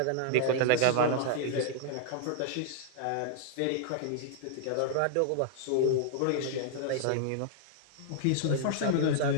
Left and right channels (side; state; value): both; different; correlation -0.01